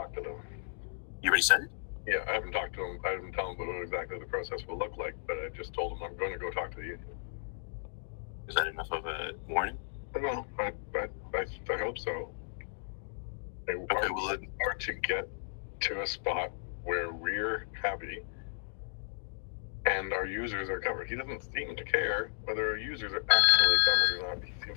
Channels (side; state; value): right; silent; digital silence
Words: to them. You already said it? Yeah, I haven't talked to them. I haven't told them what exactly the process will look like, but I just told them I'm going to go talk to the union. Is that enough of a warning? No, I hope so. Or to get to a spot where we're happy and our users are covered. He doesn't seem to care whether our users are actually covered or not. He